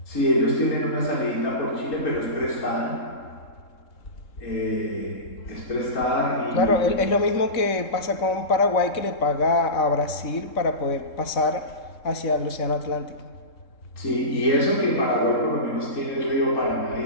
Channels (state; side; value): late; right; 3.7 ms